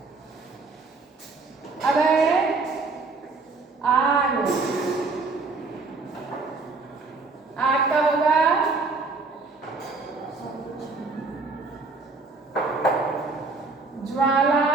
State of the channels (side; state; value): left; quieter; 3.9 dB